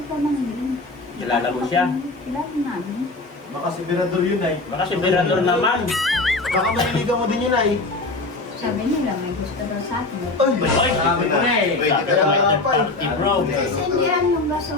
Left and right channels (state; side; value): quieter; right; 3.2 dB